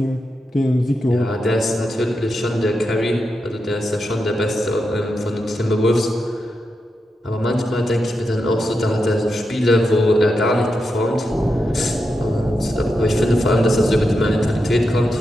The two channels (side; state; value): both; normal; correlation 0.87